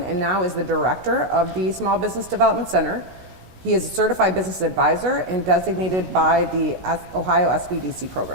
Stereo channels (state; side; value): late; left; 16 ms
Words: and now is the director of the Small Business Development Center. He is a certified business advisor and designated by the Ohio SBDC